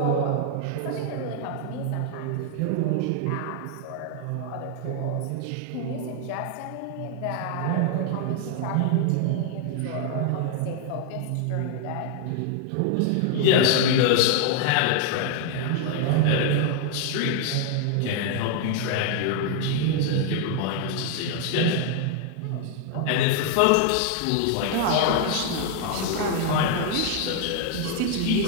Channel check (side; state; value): both; different; correlation 0.00